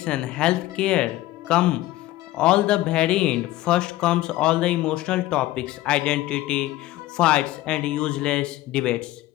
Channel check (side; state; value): right; quieter; 16.3 dB